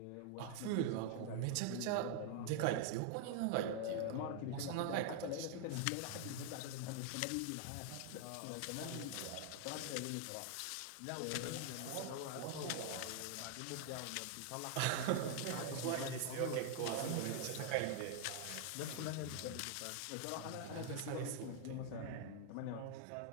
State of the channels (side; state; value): both; different; correlation 0.00